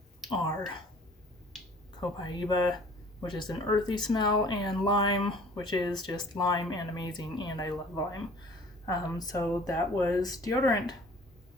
are copaiba, which is an earthy smell, and lime, which is just lime and amazing, and I love lime. So that was deodorant.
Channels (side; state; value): both; normal; correlation 0.50